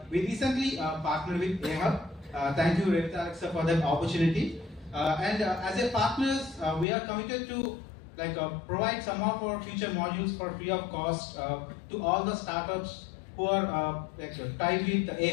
we recently partnered with AHub. Thank you, Revit Alexa, for that opportunity. And as a partners, we are committed to provide some of our future modules for free of cost to all the startups who are tied with the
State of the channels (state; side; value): drops out; right; at 6.9 s